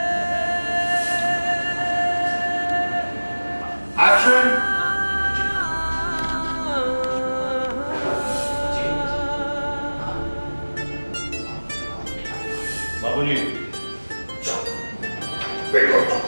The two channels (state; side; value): inverted; both; correlation -1.00